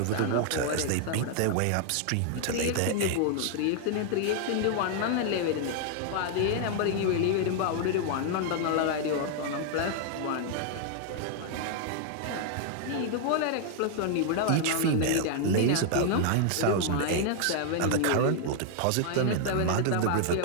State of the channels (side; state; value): both; different; correlation 0.00